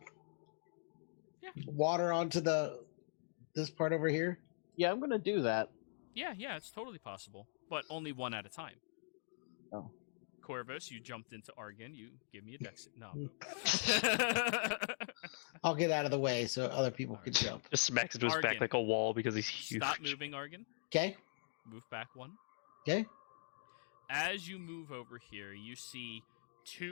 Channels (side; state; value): right; silent; digital silence